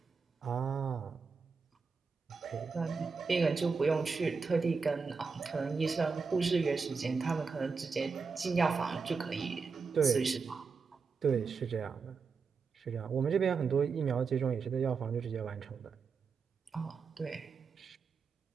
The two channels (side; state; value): left; quieter; 5.1 dB